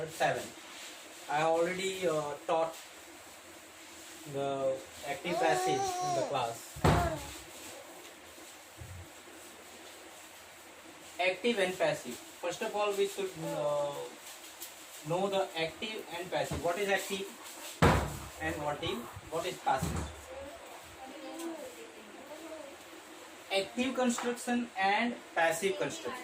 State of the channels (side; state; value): both; identical; correlation 1.00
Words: 7. I already taught the active passive in the class. Active and passive. First of all, we should know the active and passive. What is active and what is passive? Active construction and passive